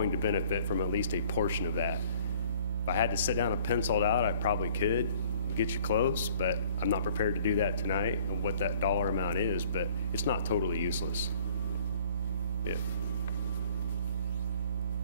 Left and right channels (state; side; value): inverted; both; correlation -0.56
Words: to benefit from at least a portion of that. If I had to sit down and pencil it out, I probably could get you close, but I'm not prepared to do that tonight and what that dollar amount is, but it's not totally useless. Yeah.